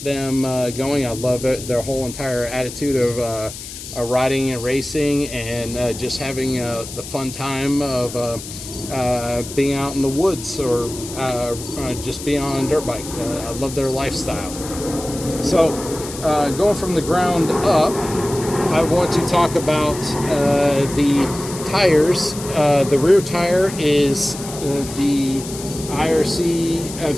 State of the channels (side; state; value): left; noise; hiss, 11 dB below the sound